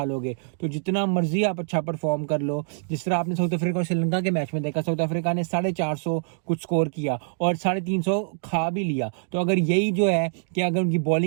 लोगे। तो जितना मर्जी आप अच्छा परफॉर्म कर लो, जिस तरह आपने साउथ अफ्रीका और श्रीलंका के मैच में देखा, साउथ अफ्रीका ने 450 कुछ स्कोर किया और 350 खा भी लिया। तो अगर यही जो है कि अगर उनकी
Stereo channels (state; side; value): silent; left; digital silence